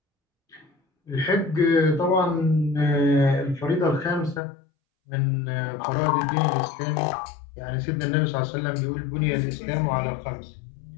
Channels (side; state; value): right; drops out; at 4.4 s